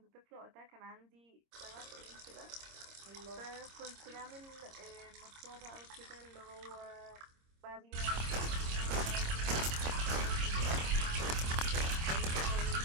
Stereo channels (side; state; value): left; late; 26 ms